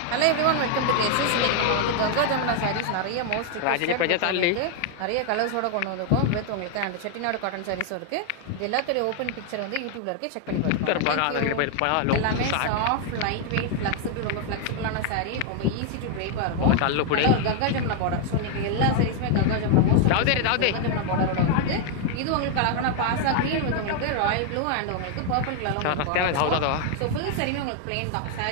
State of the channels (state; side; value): different; both; correlation 0.00